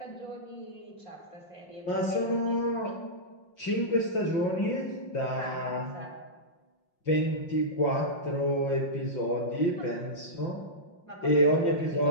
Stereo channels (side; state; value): right; late; 5.6 ms